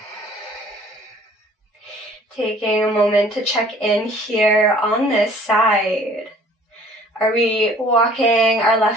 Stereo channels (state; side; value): normal; both; correlation 0.53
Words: Taking a moment to check in here on this side. Are we walking our